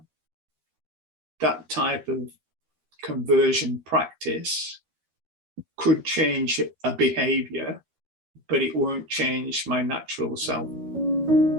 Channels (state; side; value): late; left; 13 ms